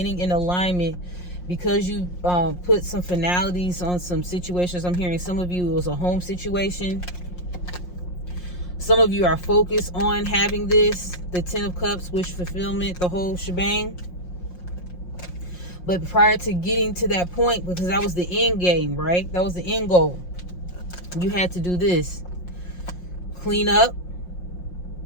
in alignment, because you put some finalities on some situations. I'm hearing some of you, it was a home situation. Some of you are focused on having this, the 10 of Cups, wish fulfillment, the whole shebang. But prior to getting to that point, because that was the end game, right? That was the end goal. You had to do this. Clean up.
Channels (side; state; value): right; late; 5.6 ms